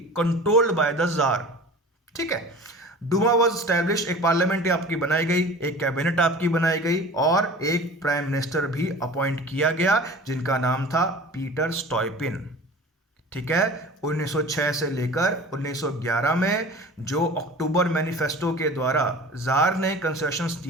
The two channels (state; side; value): normal; both; correlation 0.40